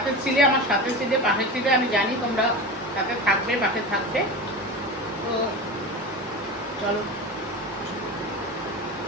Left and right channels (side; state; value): both; normal; correlation 0.27